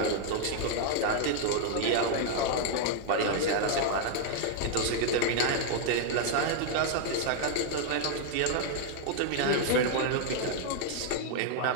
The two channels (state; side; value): different; both; correlation 0.00